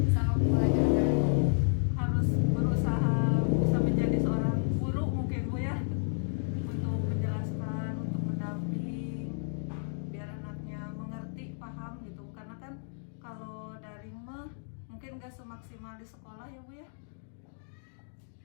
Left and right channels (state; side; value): silent; right; digital silence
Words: selama pembelajaran daring? Harus berusaha bisa menjadi seorang guru mungkin Bu ya, untuk menjelaskan, untuk mendamping biar anaknya mengerti, paham gitu. Karena kan kalau daring mah mungkin gak semaksimal di sekolah ya Bu ya.